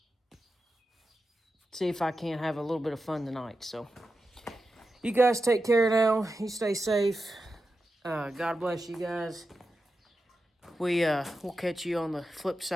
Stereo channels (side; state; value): both; normal; correlation 0.90